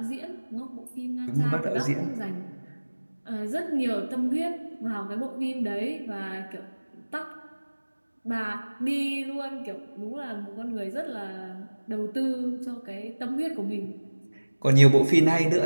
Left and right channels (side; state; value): both; inverted; correlation -1.00